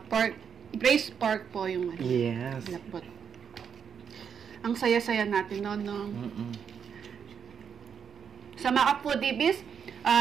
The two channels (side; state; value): left; quieter; 7.2 dB